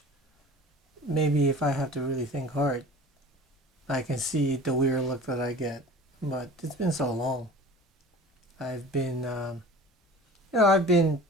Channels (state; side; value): normal; both; correlation 0.41